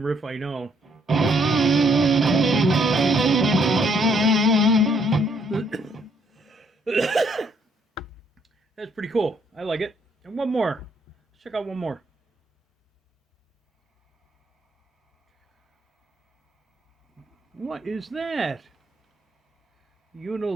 riff I know. That's pretty cool. I like it. And one more. Let's check out one more. What is that?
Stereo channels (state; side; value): normal; both; correlation 0.69